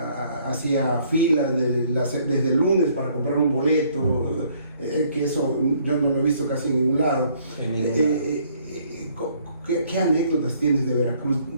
hacía filas desde el lunes para comprar un boleto, que eso yo no lo he visto casi en ningún lado. ¿Qué anécdotas tienes de Veracruz,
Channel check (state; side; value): inverted; both; correlation -0.63